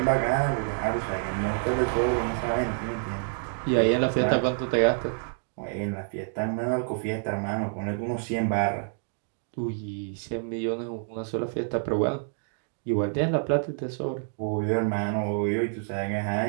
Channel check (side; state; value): left; silent; digital silence